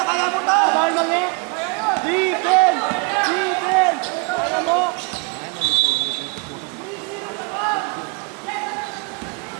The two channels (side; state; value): left; quieter; 32.6 dB